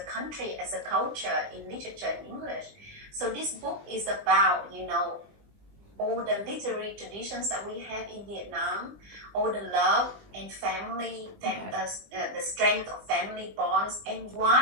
country, as a culture in literature in English. So this book is about, all the literary traditions that we have in Vietnam, all the love and family, the strength of family bonds, and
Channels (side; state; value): left; late; 20 ms